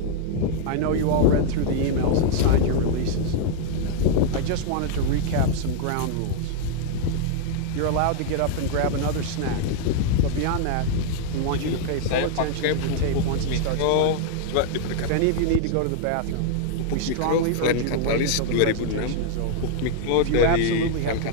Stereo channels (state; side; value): different; both; correlation -0.01